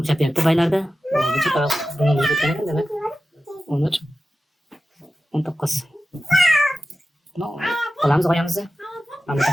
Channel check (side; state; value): both; normal; correlation 0.94